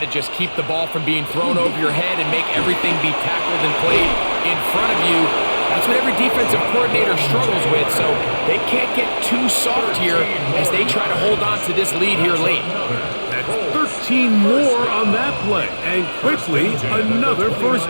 just keep the ball from being thrown over your head and make everything be tackled and played in front of you? That's what every defensive coordinator struggles with, so they can't get too soft here as they try to hold on to this lead here late. That's 13 more on that play, and quickly another first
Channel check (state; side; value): inverted; both; correlation -1.00